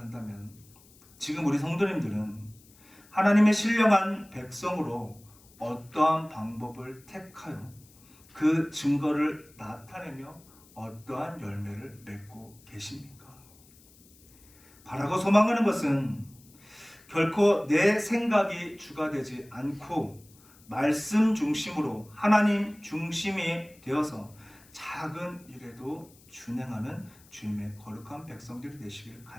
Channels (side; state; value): left; noise; hiss, 26 dB below the sound